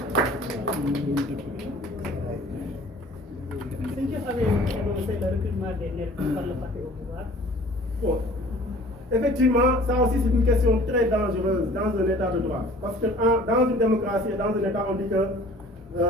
C'est qui avait annoncé le recrutement des nervis par le parti au pouvoir? Bon. Effectivement, ça aussi c'est une question très dangereuse dans un état de droit. Parce que dans une démocratie et dans un état, on dit que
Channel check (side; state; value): both; normal; correlation 0.49